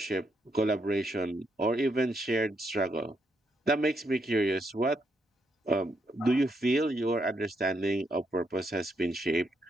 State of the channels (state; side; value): normal; both; correlation 0.78